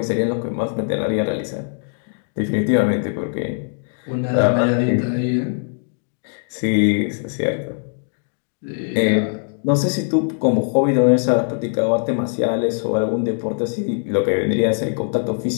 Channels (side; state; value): right; silent; digital silence